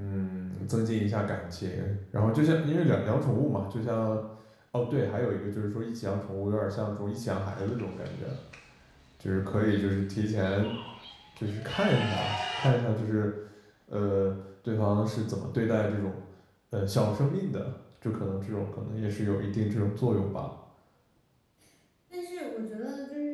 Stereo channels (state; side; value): identical; both; correlation 1.00